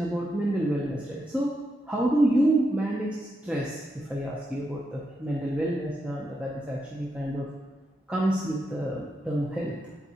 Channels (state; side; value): normal; both; correlation 0.84